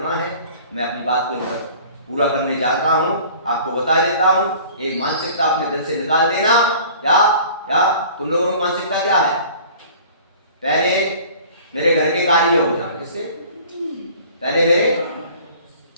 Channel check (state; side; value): inverted; both; correlation -0.47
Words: है, मैं अपनी बात को पूरा करने जाता हूं, आपको बता देता हूं। एक मानसिकता अपने दिल से निकाल देना। क्या क्या तुम लोगों की मानसिकता क्या है? पहले मेरे घर के कार्य हो जाए, किसके? पहले